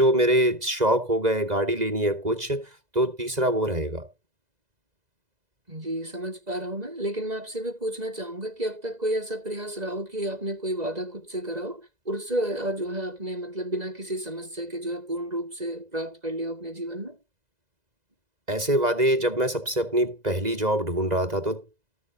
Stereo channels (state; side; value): late; left; 2.0 ms